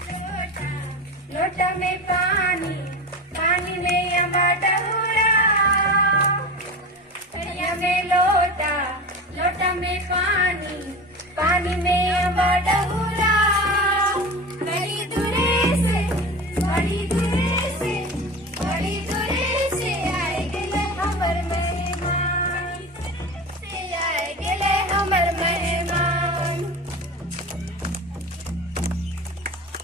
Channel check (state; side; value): normal; both; correlation 0.29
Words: लोटा में पानी पानी में अम्बा डहुरा कड़िया में लोटा लोटा में पानी पानी में अम्बा डहुरा बड़ी दूरे से बड़ी दूरे से बड़ी दूरे से आए गेले हमर मेहमान से आए गेले हमर मेहमान।